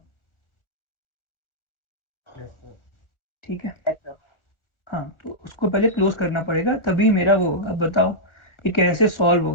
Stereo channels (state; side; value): late; right; 1.4 ms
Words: Yes sir. ठीक है, Yes, sir. हाँ, तो उसको पहले क्लोज करना पड़ेगा, तभी मेरा वो होगा। अब बताओ ये कैसे सॉल्व